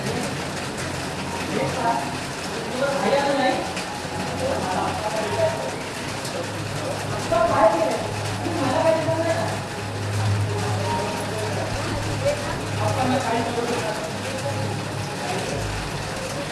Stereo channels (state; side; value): identical; both; correlation 1.00